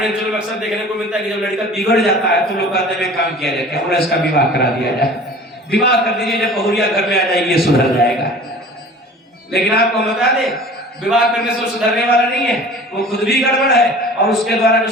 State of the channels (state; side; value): normal; both; correlation 0.43